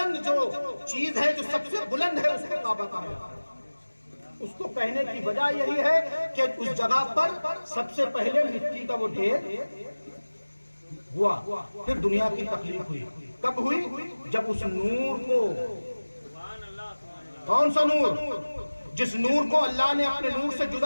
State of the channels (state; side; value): inverted; both; correlation -1.00